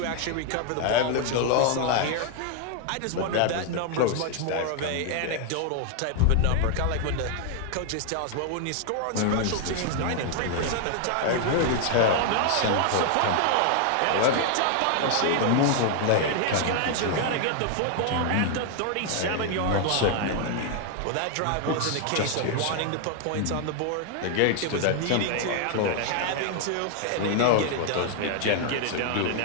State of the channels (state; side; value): different; both; correlation 0.00